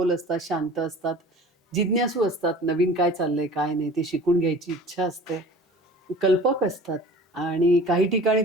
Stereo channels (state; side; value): normal; both; correlation 0.42